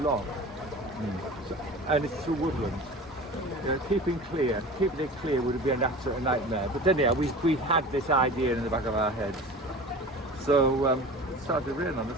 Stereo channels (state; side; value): normal; both; correlation 0.37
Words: so, and it's through woodland. Keeping it clear would have been an absolute nightmare. But anyhow, we had this idea in the back of our heads. So it started to rain on